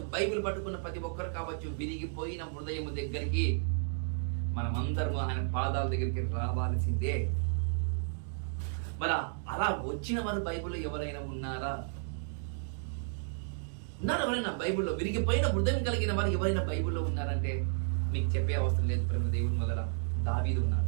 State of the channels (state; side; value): silent; left; digital silence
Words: బైబిల్ పట్టుకున్న ప్రతి ఒక్కరు కావచ్చు, విరిగిపోయిన హృదయము దగ్గరికి మనమందరము ఆయన పాదాల దగ్గరికి రావాల్సిందే. మరి అలా వచ్చిన వారు బైబిల్లో ఎవరైనా ఉన్నారా? ఎవరైనా బైబిల్లో విరిగిపోయిన హృదయం కలిగిన వారు ఎవరైనా బైబిల్లో ఉన్నారంటే మీకు చెప్పే అవసరం లేదు ప్రేమ దేవుని వల్ల. దావీదు